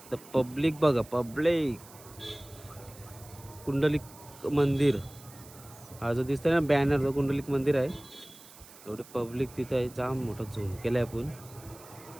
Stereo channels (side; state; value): right; noise; hiss, 20 dB below the sound